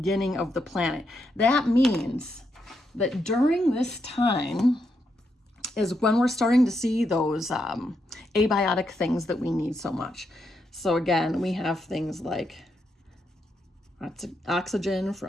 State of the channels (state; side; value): normal; both; correlation 0.81